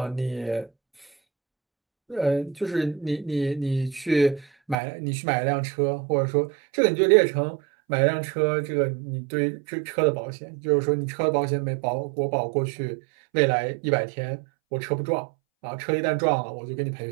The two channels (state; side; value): drops out; left; at 4.8 s